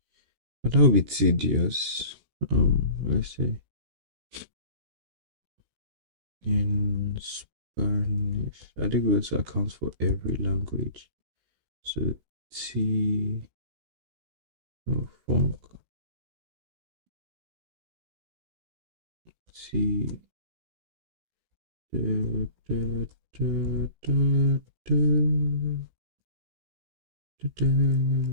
But that would be tedious. Let's say in Spanish. I think we also account for every language. So T funk T da, da, da, da, da, da, da,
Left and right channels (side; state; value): left; late; 16 ms